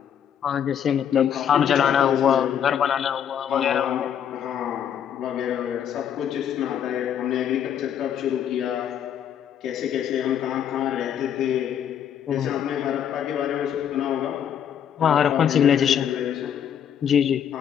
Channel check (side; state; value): right; quieter; 9.1 dB